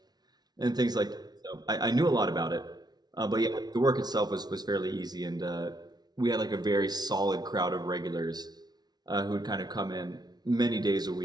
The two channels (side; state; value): left; late; 0.19 ms